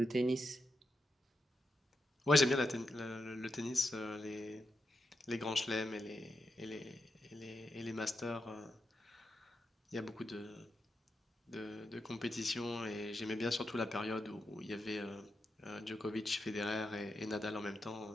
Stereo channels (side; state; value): both; normal; correlation 0.86